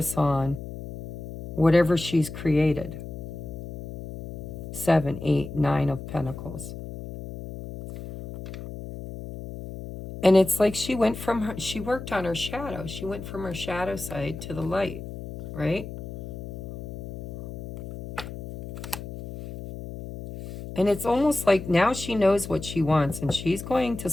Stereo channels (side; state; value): left; noise; hum, 10 dB below the sound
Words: on whatever she's created. 7, 8, 9 of Pentacles. And it's like she worked on her shadow. She went from her shadow side to the light, right? And it's almost like now she knows what she wants and she's going to